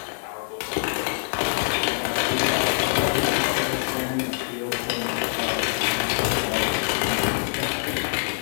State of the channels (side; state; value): right; silent; digital silence